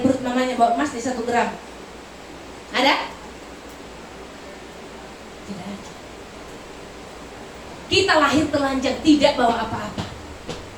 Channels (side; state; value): both; identical; correlation 1.00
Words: perut mamanya bawa emas di 1 gram. Ada? Tidak ada. Kita lahir telanjang, tidak bawa apa-apa.